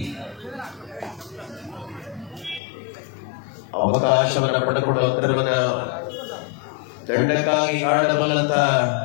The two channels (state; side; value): drops out; right; at 2.6 s